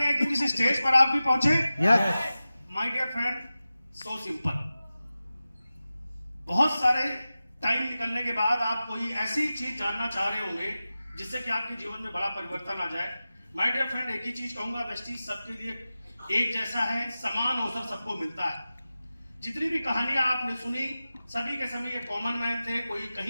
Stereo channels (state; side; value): inverted; both; correlation -0.95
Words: हैं कि किसी स्टेज पर आप भी पहुंचे? Yes. My dear friend, so simple. बहुत सारे टाइम निकलने के बाद आप कोई ऐसी चीज जानना चाह रहे होंगे जिससे कि आपके जीवन में बड़ा परिवर्तन आ जाए। माय डियर फ्रेंड, एक ही चीज कहूंगा, वेस्टीज सबके लिए एक जैसा है, समान अवसर सबको मिलता है। जितनी भी कहानियां आपने सुनी, सभी के सभी एक कॉमन मैन थे। कोई